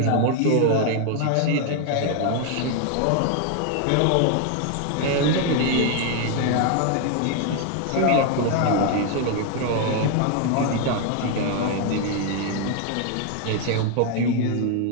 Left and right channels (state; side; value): different; both; correlation 0.00